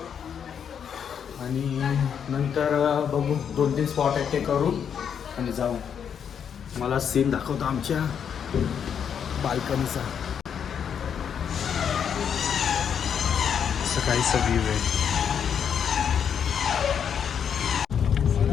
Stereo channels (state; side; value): quieter; right; 7.8 dB